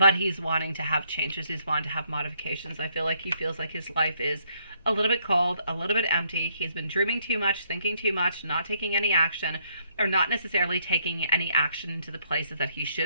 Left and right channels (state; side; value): inverted; both; correlation -0.70